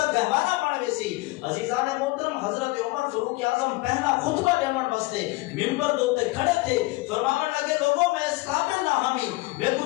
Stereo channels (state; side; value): quieter; right; 21.9 dB